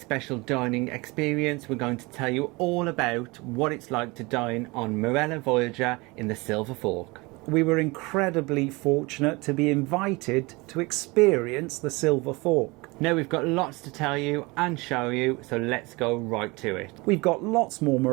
dining experience. We're going to tell you all about what it's like to dine on Marella Voyager in the Silver Fork. We were incredibly fortunate to be invited to experience the Silver Fork. Now we've got lots to tell you and show you, so let's go right to it. We've got lots more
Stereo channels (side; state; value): left; quieter; 24.8 dB